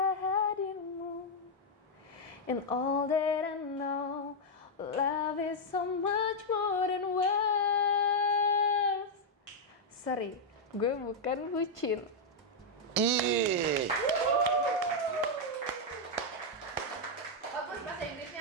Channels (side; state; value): both; normal; correlation -0.02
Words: hadirmu. And all that I know, love is so much more than words. Sorry, gue bukan bucin. Ih, Bagus bahasa